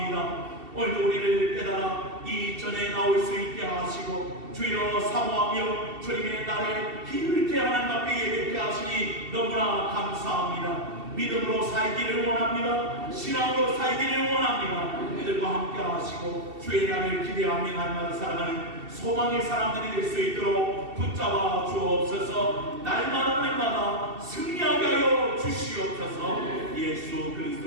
오늘도 우리를 깨달아 이 전에 나올 수 있게 하시고 주여 사모하며 주님의 날에 힘있게 하나님 앞에 예배케 하시니 너무나 감사합니다. 믿음으로 살기를 원합니다. 신앙으로 살기를 원합니다. 이들과 함께 하시고 주의 날을 기대하며 날마다 살아가는 소망의 사람들이 될 수 있도록 붙잡아 주옵소서. 날마다 승리하게 하여 주시옵소서. 예수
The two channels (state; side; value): late; left; 2.7 ms